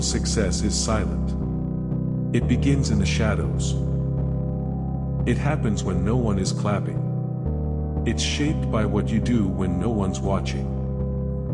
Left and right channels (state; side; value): identical; both; correlation 1.00